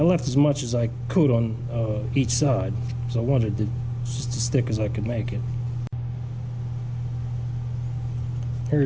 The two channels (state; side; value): identical; both; correlation 1.00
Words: left as much as I could on each side. So I wanted it just as thick as I could make it. Here